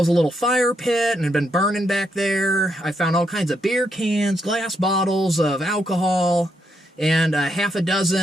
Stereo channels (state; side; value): normal; both; correlation 0.78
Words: a little fire pit and had been burning back there. I found all kinds of beer cans, glass bottles of alcohol, and half a